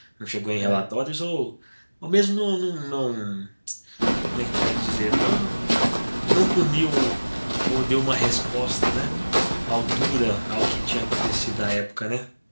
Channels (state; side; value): inverted; both; correlation -1.00